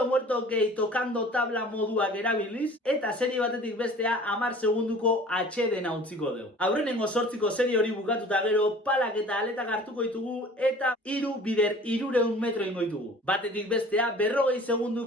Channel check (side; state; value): both; normal; correlation 0.46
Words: muerto gehi tokando tabla moduak erabiliz, eta serie batetik bestea 10 segunduko atxeden utziko dugu. Aurrenengo 8ko serie hori bukatuta gero, palak eta aletak hartuko ditugu, eta 3 bider 300 metro ingo ditugu. Batetik bestea 40